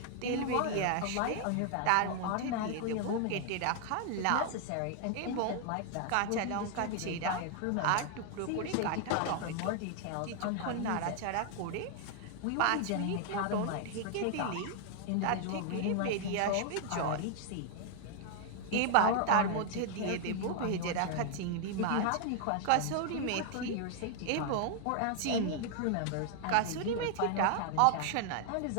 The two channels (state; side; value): different; both; correlation 0.00